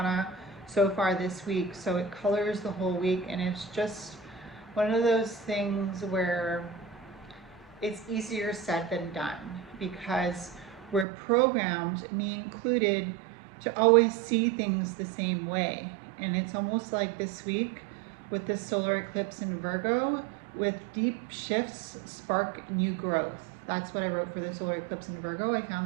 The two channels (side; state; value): left; drops out; at 11.1 s